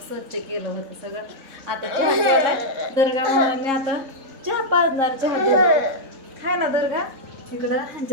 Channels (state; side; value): late; left; 3.7 ms